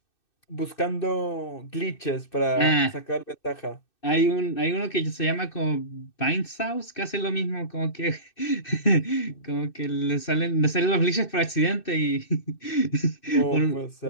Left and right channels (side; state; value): right; late; 2.6 ms